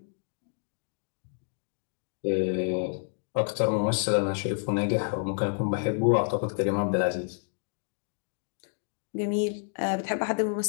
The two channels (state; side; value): silent; right; digital silence